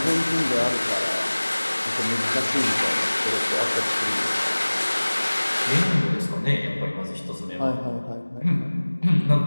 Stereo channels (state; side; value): inverted; both; correlation -1.00